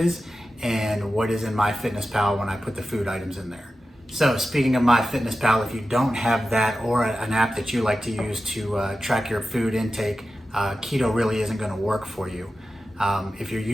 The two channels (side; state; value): both; normal; correlation 0.93